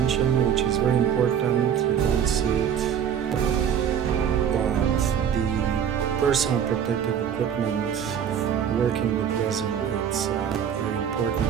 which is very important, you don't see it, but the personal protective equipment working with resin, it's very important,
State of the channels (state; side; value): quieter; left; 8.5 dB